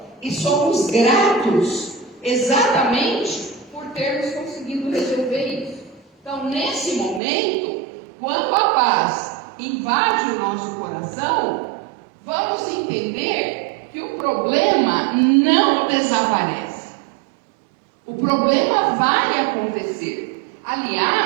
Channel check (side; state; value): left; drops out; at 7.2 s